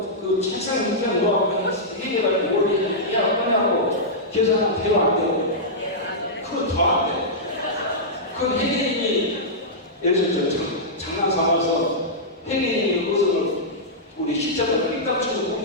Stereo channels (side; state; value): both; normal; correlation -0.12